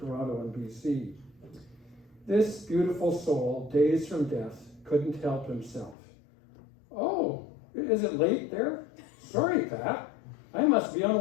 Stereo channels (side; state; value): right; drops out; at 6.0 s